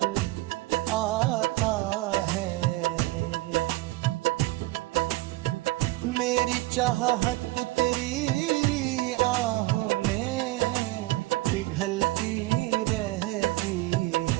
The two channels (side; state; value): left; quieter; 19.6 dB